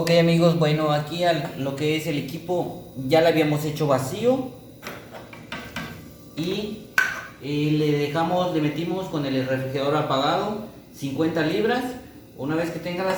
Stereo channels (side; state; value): both; identical; correlation 1.00